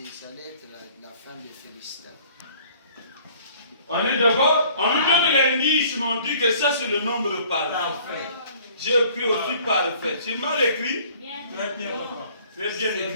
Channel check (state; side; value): inverted; both; correlation -0.54